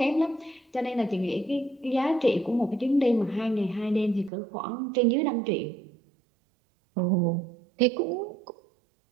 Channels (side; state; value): left; drops out; at 4.3 s